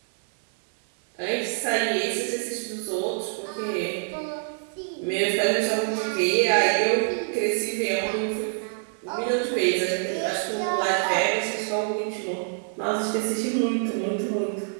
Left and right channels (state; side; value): silent; left; digital silence